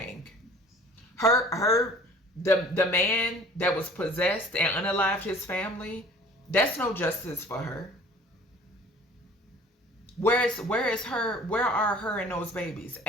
The man that was possessed and unalived his family, that's no justice for her. Where is her? Where are her and those babies?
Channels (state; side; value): normal; both; correlation 0.49